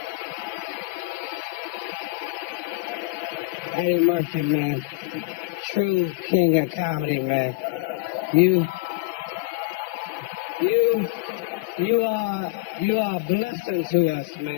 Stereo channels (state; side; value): quieter; right; 23.5 dB